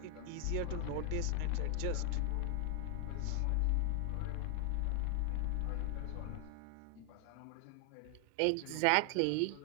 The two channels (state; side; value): different; both; correlation 0.00